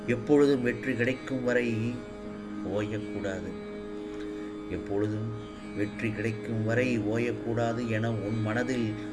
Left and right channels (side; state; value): both; identical; correlation 1.00